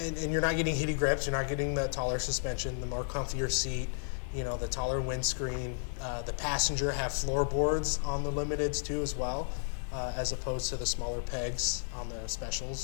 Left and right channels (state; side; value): silent; right; digital silence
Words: you're not getting heated grips, you're not getting the taller suspension, the more comfier seat, you know, the taller windscreen. The passenger have floorboards on the Limiteds too as well. As opposed to the smaller pegs on the specials.